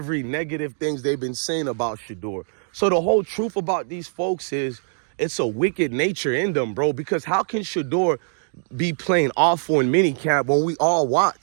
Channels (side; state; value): left; silent; digital silence